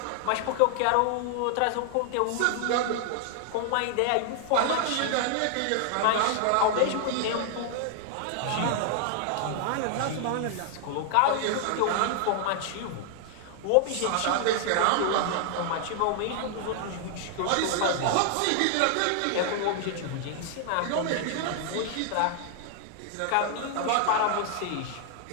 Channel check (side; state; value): both; different; correlation 0.00